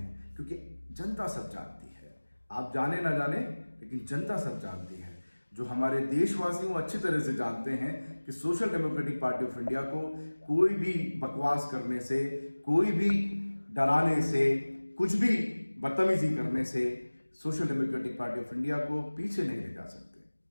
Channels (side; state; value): both; inverted; correlation -1.00